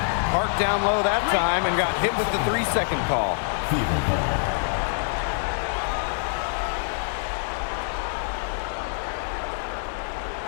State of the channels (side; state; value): right; silent; digital silence